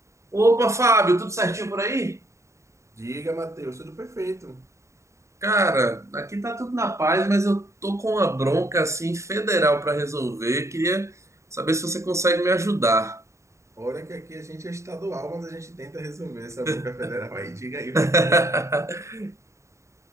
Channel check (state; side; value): late; left; 0.14 ms